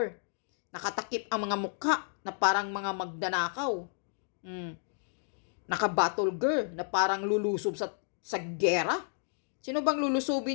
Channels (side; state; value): right; silent; digital silence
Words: Nakatakip ang mga mukha na parang mga magdanakaw. Naka-battle girl na parang lulusob sa gera. Sino bang